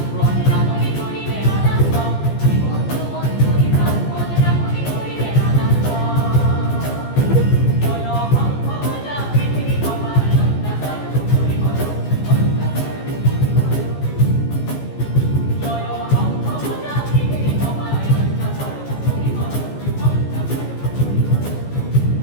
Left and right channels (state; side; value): late; right; 14 ms